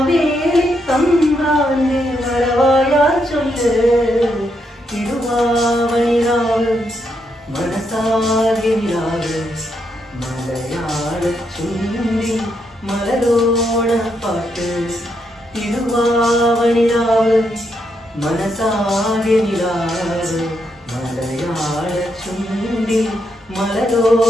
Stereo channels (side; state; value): both; normal; correlation 0.79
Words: തമ്പ്രാന്റെ വരവായാ ചൊല്ല്. തിരുവാവണിരാവ് മനസാകെ നിലാവ് മലയാള ചുണ്ടിൽ മലരോണപ്പാട്ട്. തിരുവാവണിരാവ് മനസാകെ നിലാവ് മലയാള ചുണ്ടിൽ